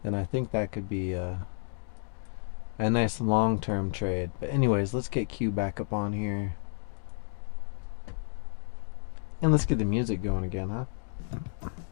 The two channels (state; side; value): silent; right; digital silence